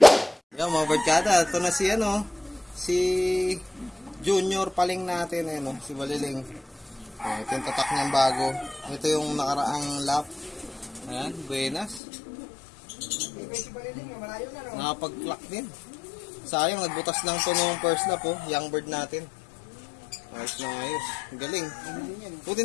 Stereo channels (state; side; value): drops out; right; at 12.0 s